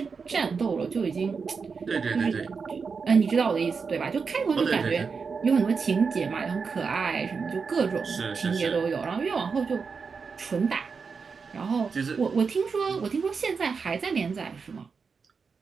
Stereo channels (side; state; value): left; quieter; 5.3 dB